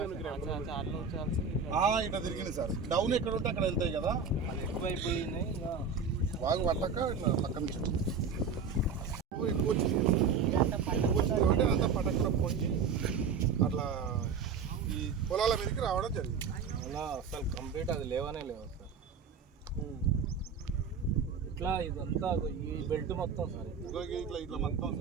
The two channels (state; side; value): quieter; left; 5.7 dB